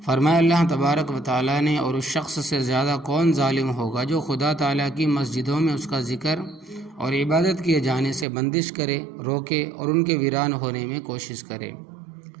فرمایا اللہ تبارک و تعالیٰ نے، اور اس شخص سے زیادہ کون ظالم ہوگا جو خدا تعالیٰ کی مسجدوں میں اس کا ذکر اور عبادت کیے جانے سے بندش کرے، روکے اور ان کے ویران ہونے میں کوشش کرے۔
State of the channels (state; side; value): drops out; left; at 8.2 s